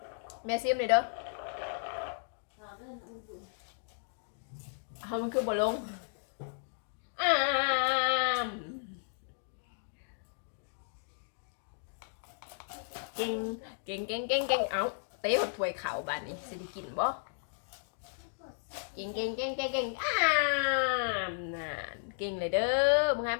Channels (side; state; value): right; silent; digital silence